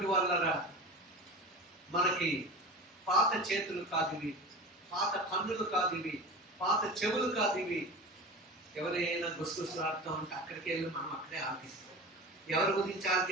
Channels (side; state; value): both; normal; correlation 0.32